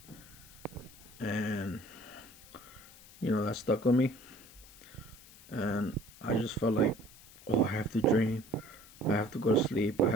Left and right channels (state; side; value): noise; left; hiss, 21 dB below the sound